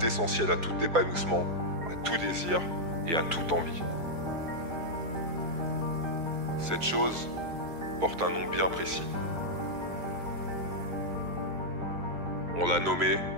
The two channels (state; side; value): late; left; 4.5 ms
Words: à tout épanouissement, à tout désir et à toute envie. Cette chose porte un nom bien précis. On l'a nommé